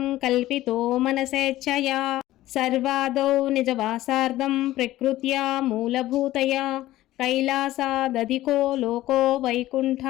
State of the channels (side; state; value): right; quieter; 15.5 dB